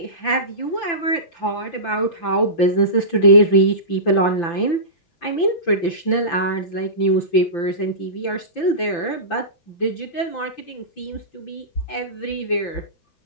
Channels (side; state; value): right; late; 5.9 ms